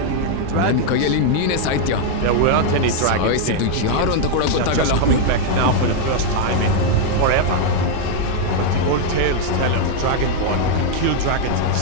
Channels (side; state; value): both; different; correlation 0.00